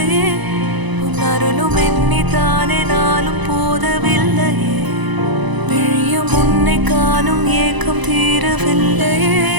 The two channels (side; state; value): left; late; 1.0 ms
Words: உன் அருளும் எண்ணித்தானே நாளும் போதவில்லையே விழியும் உன்னை காணும் ஏக்கம் தீரவில்லையே